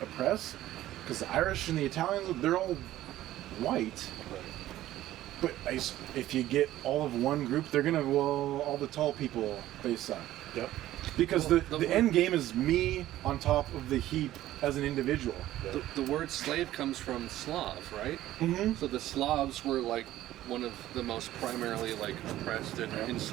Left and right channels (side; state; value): left; quieter; 14.3 dB